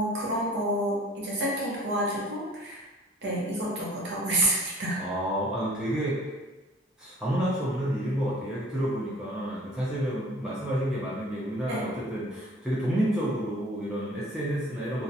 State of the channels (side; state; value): both; normal; correlation 0.49